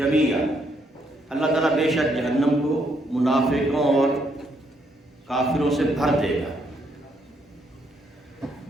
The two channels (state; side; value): normal; both; correlation 0.74